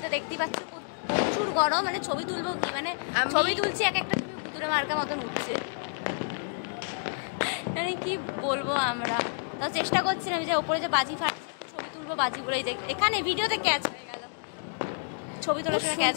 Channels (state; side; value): silent; right; digital silence